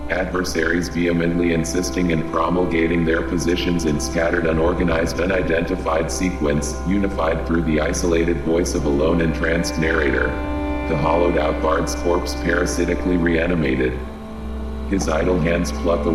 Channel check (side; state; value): both; identical; correlation 1.00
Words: Adversaries vehemently insisting and promulgating their positions in scattered, unorganized, unidentified sequence, unified through the isolated voice of a lone entranced narrator. The hollowed-out bard's corpse parasitically reanimated. His idle hands pluck